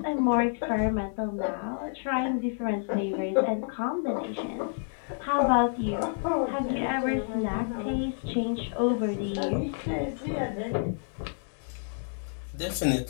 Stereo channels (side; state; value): right; silent; digital silence